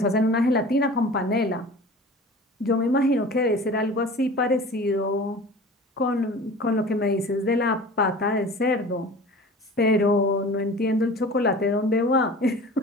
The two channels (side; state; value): both; normal; correlation 0.40